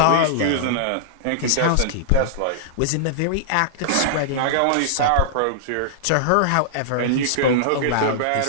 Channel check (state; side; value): different; both; correlation -0.02